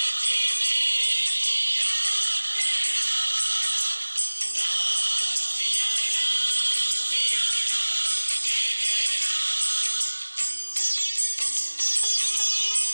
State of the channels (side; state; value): both; inverted; correlation -1.00